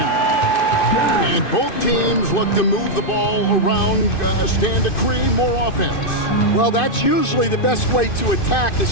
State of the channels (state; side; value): late; right; 2.5 ms